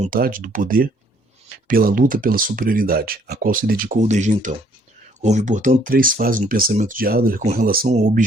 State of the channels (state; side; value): normal; both; correlation 0.63